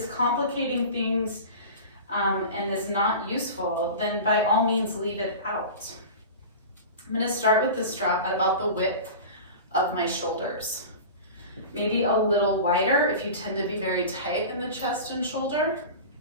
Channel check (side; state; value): both; inverted; correlation -0.33